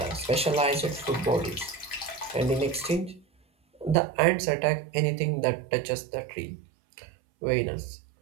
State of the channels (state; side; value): drops out; left; at 4.0 s